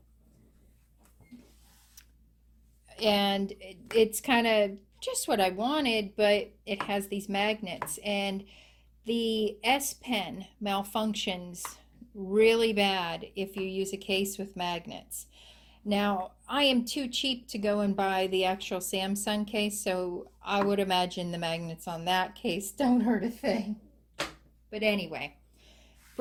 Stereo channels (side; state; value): both; identical; correlation 1.00